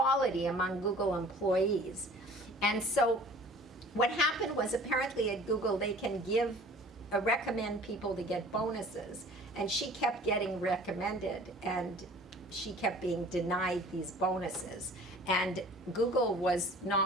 among Google employees. And so what happened was, apparently at Google, they can give recommend people to get bonuses. And she kept getting recommended, and she kept being denied these bonuses. And Google was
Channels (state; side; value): normal; both; correlation 0.48